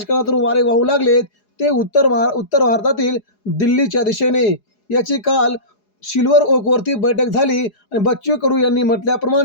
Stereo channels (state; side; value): late; right; 4.8 ms